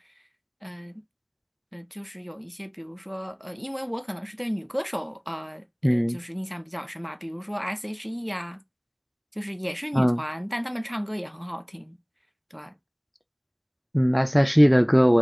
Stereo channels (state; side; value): identical; both; correlation 1.00